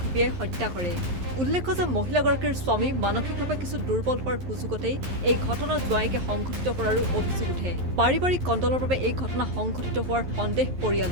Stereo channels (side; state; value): left; late; 11 ms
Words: ঘপিয়াই হত্যা কৰে। উল্লেখ্য যে মহিলাগৰাকীৰ স্বামী মানসিকভাৱে কিছু দুৰ্বল হোৱাৰ সুযোগতেই এই ঘটনা জোৱায়েকে সংঘটিত কৰাৰো অভিযোগ উঠে। পাৰিবাৰিক কণ্ডলৰ বাবে এই ঘটনা সংঘটিত হোৱাৰ সন্দেহ